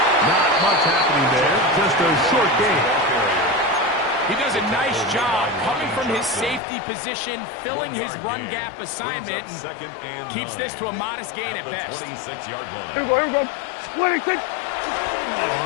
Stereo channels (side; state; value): right; drops out; at 6.6 s